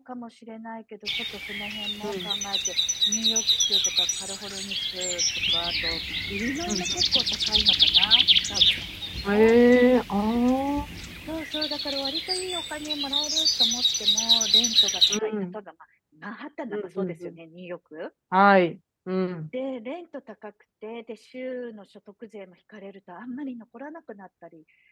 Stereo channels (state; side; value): identical; both; correlation 1.00